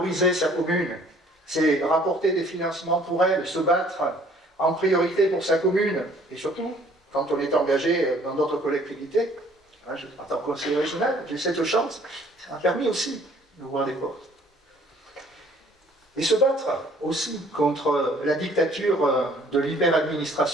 sa commune, c'est rapporter des financements pour elle, se battre en priorité pour sa commune, et surtout, quand on est engagé dans d'autres collectivités, en tant que conseiller régional, j'ai cette chance, ça m'a permis aussi d'ouvrir des portes. Et se battre aussi contre la dictature de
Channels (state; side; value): normal; both; correlation 0.58